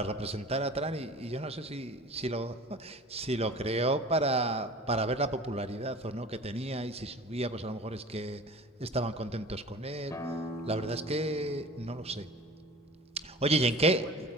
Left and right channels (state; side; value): normal; both; correlation 0.40